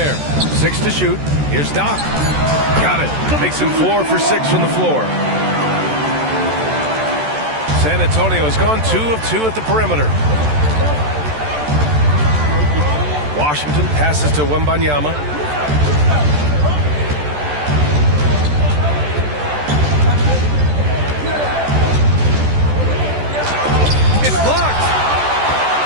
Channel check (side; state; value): left; late; 14 ms